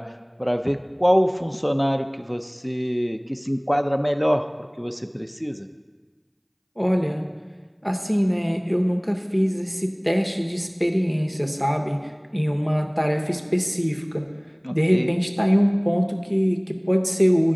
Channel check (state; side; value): identical; both; correlation 1.00